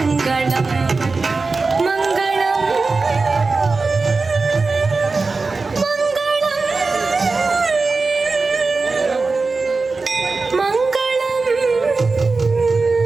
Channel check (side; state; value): left; quieter; 4.0 dB